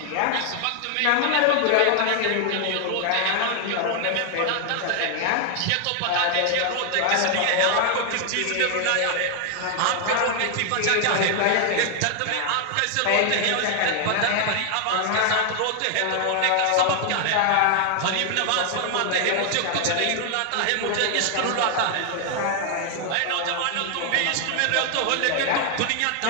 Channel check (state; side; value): different; both; correlation 0.00